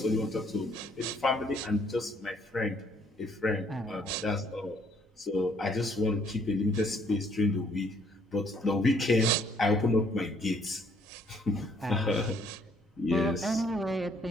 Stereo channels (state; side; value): normal; both; correlation 0.65